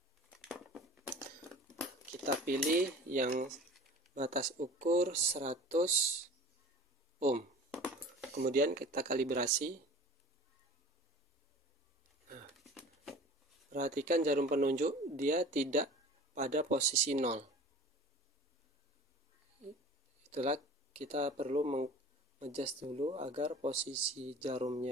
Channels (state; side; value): normal; both; correlation 0.42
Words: Kita pilih yang batas ukur 100 ohm. Kemudian kita kalibrasi. Nah, perhatikan jarum penunjuk, dia tidak pada posisi 0. Itulah kita perlu mengadjust dulu agar posisi